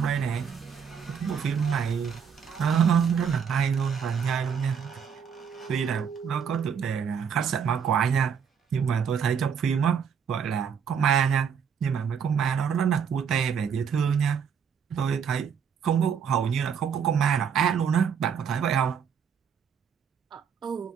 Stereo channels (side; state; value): left; quieter; 7.1 dB